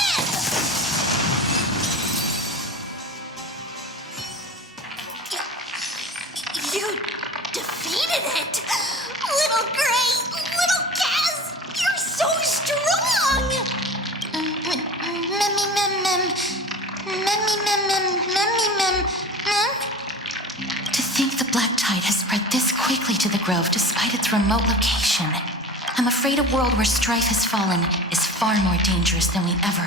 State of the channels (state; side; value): normal; both; correlation 0.35